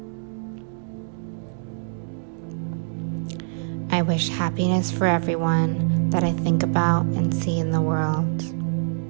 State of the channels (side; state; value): left; silent; digital silence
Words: I wish happiness for everyone that I think about and see in the world.